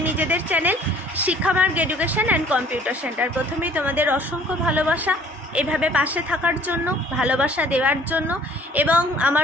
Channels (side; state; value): both; normal; correlation 0.54